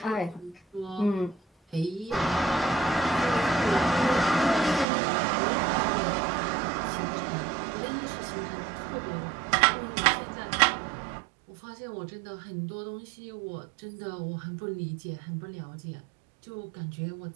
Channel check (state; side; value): drops out; left; at 4.9 s